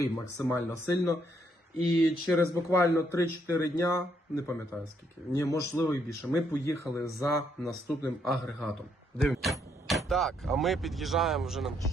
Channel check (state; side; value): normal; both; correlation 0.73